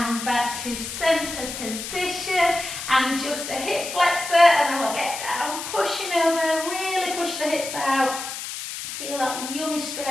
back to centre position. And just a hip flexor. And then we'll get down. Pushing over. Really push the hips out. Feel that yummy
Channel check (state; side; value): noise; left; hiss, 7 dB below the sound